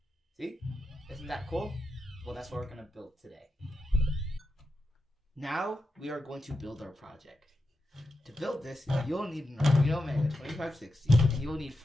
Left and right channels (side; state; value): both; normal; correlation 0.88